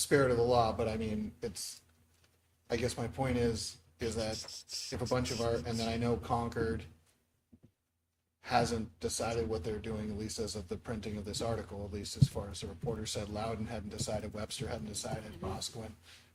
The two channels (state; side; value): identical; both; correlation 1.00